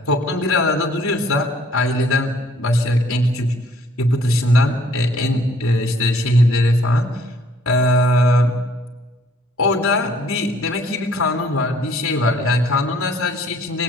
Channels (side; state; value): both; normal; correlation 0.60